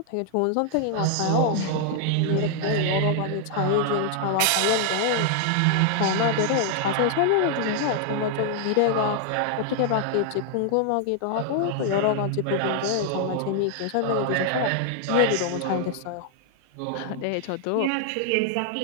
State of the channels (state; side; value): different; both; correlation 0.00